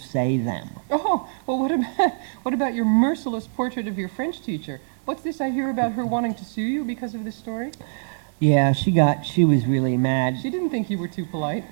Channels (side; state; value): left; silent; digital silence